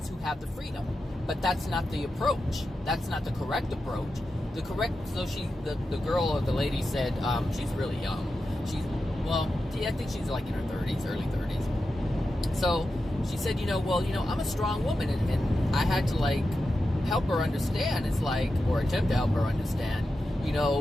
who have the freedom. But that's not the approach. That's not the correct approach. The girl or the lady said, she's really young. I think she's like in her 30s, early 30s. So she said, I'm a strong woman, and I had to help her understand. It's or attempt to help her understand.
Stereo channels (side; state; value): both; normal; correlation 0.90